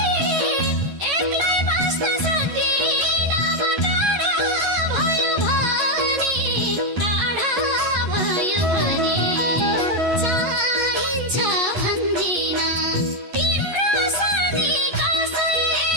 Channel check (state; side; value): late; left; 11 ms